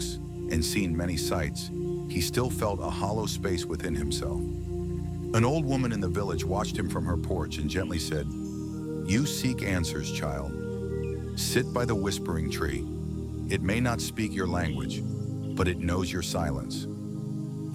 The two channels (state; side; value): identical; both; correlation 1.00